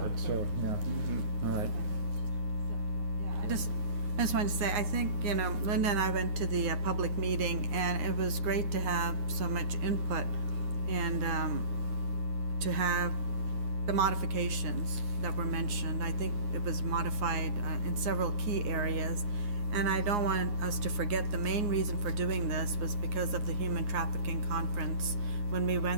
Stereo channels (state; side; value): late; left; 9.7 ms